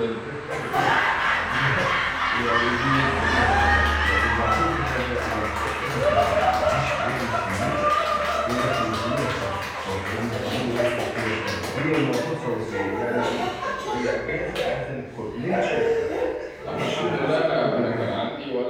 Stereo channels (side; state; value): both; identical; correlation 1.00